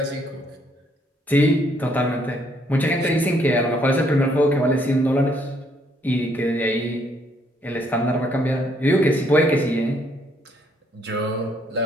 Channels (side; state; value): both; normal; correlation 0.69